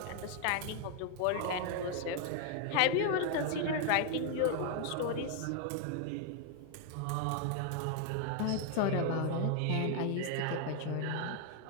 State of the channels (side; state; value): both; different; correlation 0.00